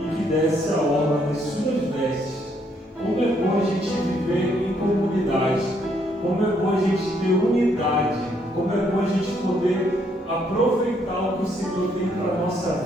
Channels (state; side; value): normal; both; correlation 0.71